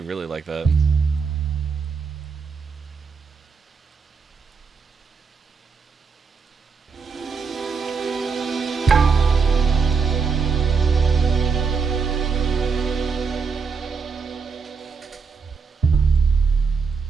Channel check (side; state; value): left; quieter; 5.3 dB